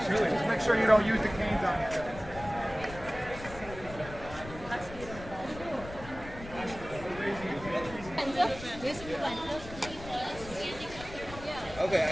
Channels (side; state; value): left; noise; rumble, 14 dB below the sound